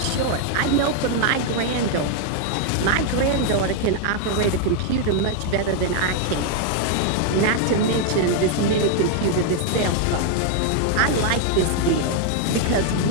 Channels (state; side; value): different; both; correlation 0.00